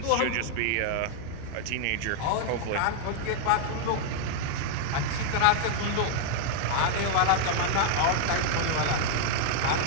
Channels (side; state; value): both; different; correlation 0.00